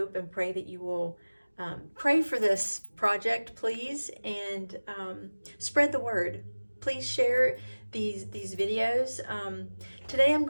and pray that you will pray for this project, please, and spread the word. Please share these videos. Today I'm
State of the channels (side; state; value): both; inverted; correlation -1.00